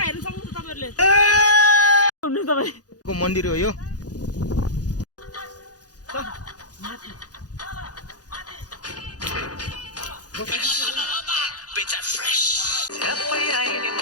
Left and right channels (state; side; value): late; right; 0.68 ms